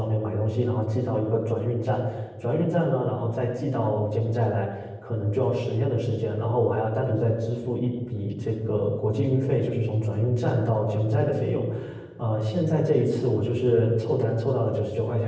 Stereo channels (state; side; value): identical; both; correlation 1.00